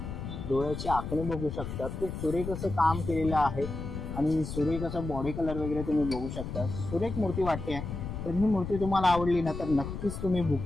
डोळ्याची आखणी बघू शकतात। खूप सुरेख असं काम केलेलं आहे आणि सुरेख असं बॉडी कलर वगैरे तुम्ही बघू शकता। सुरेख मूर्ती वाटते। तर ही मूर्ती तुम्हाला आवडली ना तर नक्कीच तुम्ही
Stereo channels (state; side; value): noise; left; rumble, 7 dB below the sound